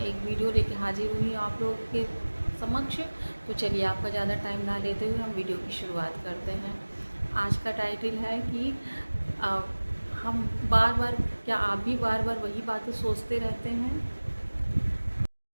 एक वीडियो लेके हाजिर हुई हूँ आप लोगों के समक्ष। तो चलिए, आपका ज़्यादा टाइम ना लेते हुए हम वीडियो की शुरुआत करते हैं। आज का टाइटल है कि अ, हम बार बार, क्या आप भी बार बार वही बातें सोचते रहते हैं?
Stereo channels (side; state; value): both; inverted; correlation -1.00